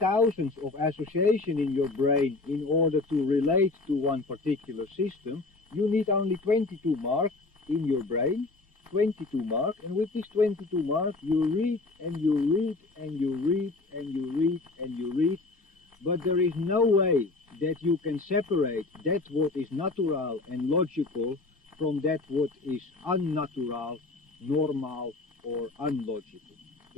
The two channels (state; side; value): quieter; right; 3.4 dB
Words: of association in your brain in order to relate to one particular system. You need only 22 marks in your brain, 22 marks, and with these 22 marks you read and you read and you read and you read and you read, but there is no way that you can separate that what is natural and logical from that what is unnatural, normal or unlogical.